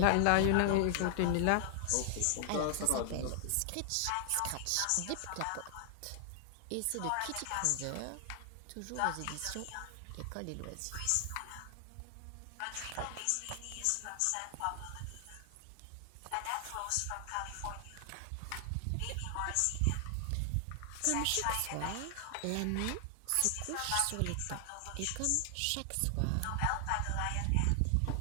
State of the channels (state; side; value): different; both; correlation 0.00